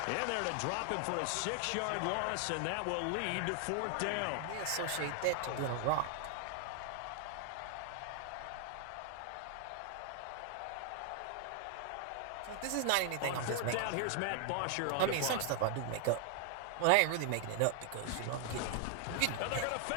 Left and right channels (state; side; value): different; both; correlation 0.00